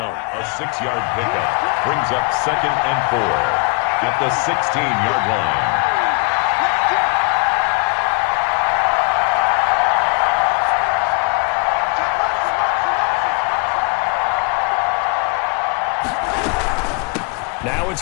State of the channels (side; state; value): right; quieter; 34.4 dB